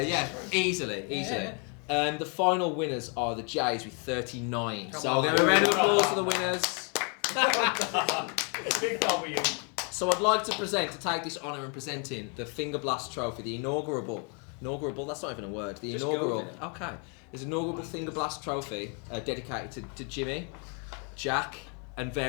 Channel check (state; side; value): quieter; right; 37.5 dB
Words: easily. The final winners are the Jays with 39. So I'll give a round of applause for the winners. Big W. So I'd like to take this honour in presenting the Fingerblast Trophy, the inaugural, that's not even a word, the Just inaugural, go with it. okay, there's an inaugural Fingerblast Trophy dedicated to Jimi, Jack, and